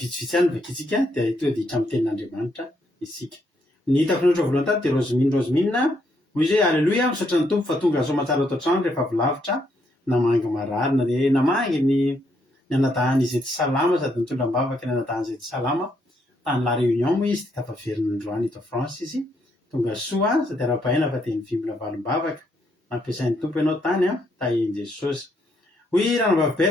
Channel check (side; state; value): both; normal; correlation 0.74